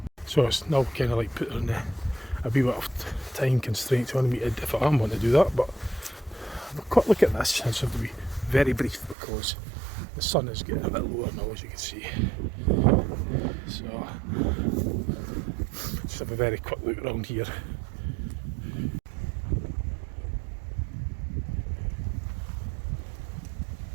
So it's now kind of like put on a wee bit of time constraints on me if I am want to do that, but have a quick look at this. I just have to be very brief because the sun is getting a bit lower now, as you can see. So just have a very quick look around here.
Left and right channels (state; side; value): drops out; left; at 9.2 s